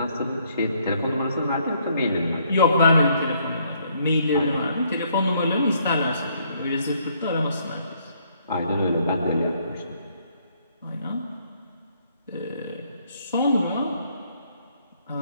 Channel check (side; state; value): both; inverted; correlation -0.68